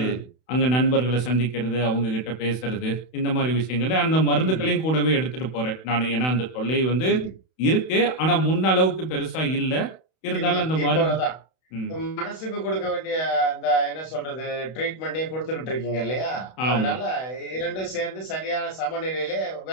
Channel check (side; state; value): right; late; 32 ms